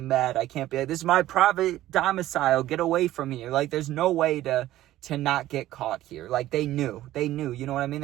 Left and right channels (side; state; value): left; quieter; 14.6 dB